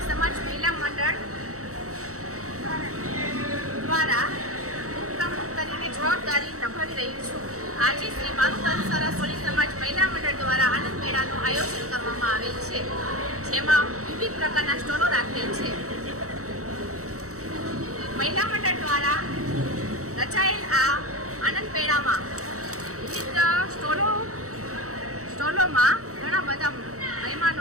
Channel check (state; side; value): late; left; 0.65 ms